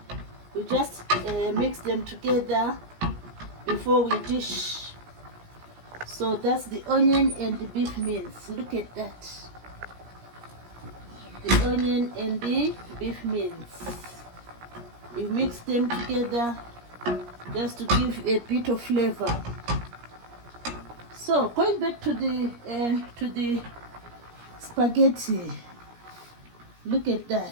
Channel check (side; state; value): left; late; 17 ms